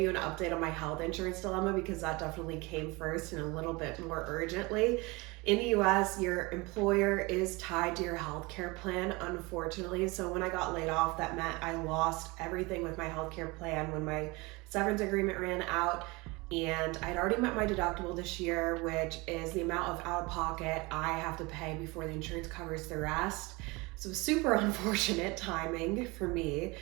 an update on my health insurance dilemma because that definitely came first and a little bit more urgently. In the US, your employer is tied to your healthcare plan, unfortunately. So when I got laid off, that meant I lost everything with my healthcare plan when my severance agreement ran out. And I'd already met my deductible this year, which is the amount of out of pocket I have to pay before the insurance covers the rest. So super unfortunate timing for me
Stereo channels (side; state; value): left; quieter; 24.9 dB